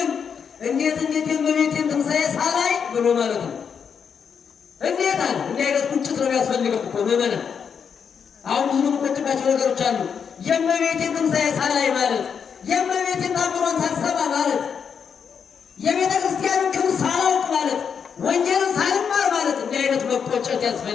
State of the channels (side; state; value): right; quieter; 6.9 dB